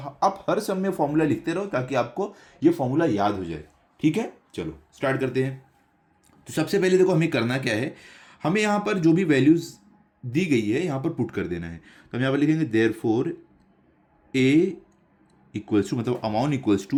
हर सम में फॉर्मूला लिखते रहो ताकि आपको ये फॉर्मूला याद हो जाए। ठीक है, चलो स्टार्ट करते हैं। तो सबसे पहले देखो हमें करना क्या है, हमें यहाँ पर जो भी वैल्यूज दी गई है यहाँ पर पुट कर देना है। तो हम यहाँ पर लिखेंगे देयरफॉर ए इक्वल्स टू, मतलब amount equals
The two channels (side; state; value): both; identical; correlation 1.00